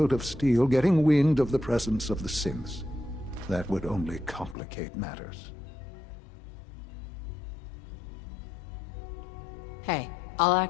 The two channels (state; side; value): drops out; right; at 4.5 s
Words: of Steel getting wind of the presence of the synths. That would only complicate matters. Hey, I'll